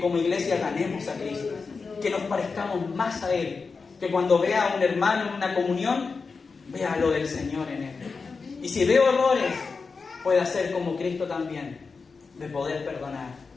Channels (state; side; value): quieter; right; 4.7 dB